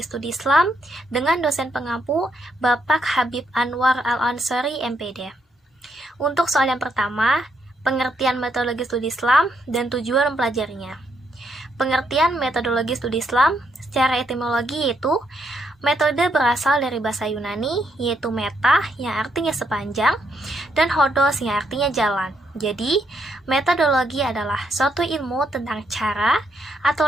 Studi Islam dengan dosen pengampu Bapak Habib Anwar Al-Ansari MPD. Untuk soal yang pertama, pengertian metodologi studi Islam dan tujuan mempelajarinya. Pengertian metodologi studi Islam secara etimologi yaitu metode berasal dari bahasa Yunani, yaitu meta yang artinya sepanjang, dan hodos yang artinya jalan. Jadi, metodologi adalah suatu ilmu tentang cara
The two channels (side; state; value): both; normal; correlation 0.76